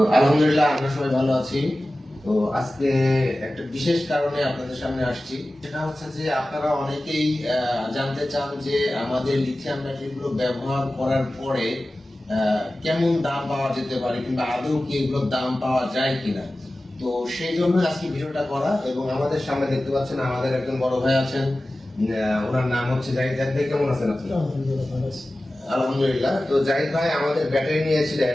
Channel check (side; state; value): both; normal; correlation 0.96